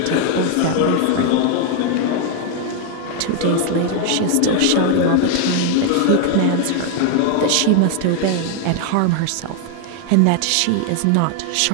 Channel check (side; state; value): both; different; correlation 0.00